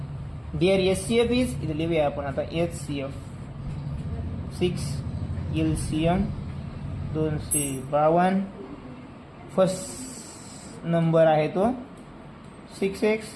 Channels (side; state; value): both; identical; correlation 1.00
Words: Their SCF is इथे लिहूया आपण आता HCF 6 LCM 252. फर्स्ट नंबर आहे तो 6x